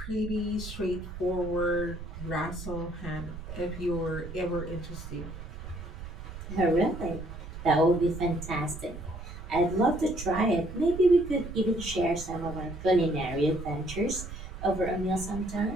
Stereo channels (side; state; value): right; noise; rumble, 10 dB below the sound